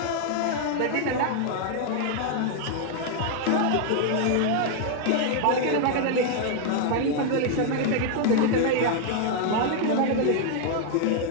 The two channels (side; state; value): both; different; correlation 0.00